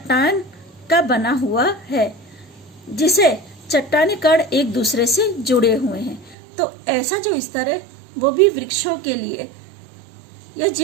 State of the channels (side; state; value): left; drops out; at 6.4 s